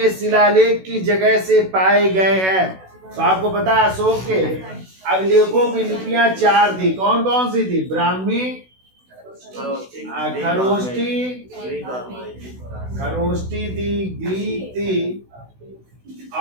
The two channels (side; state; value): left; late; 16 ms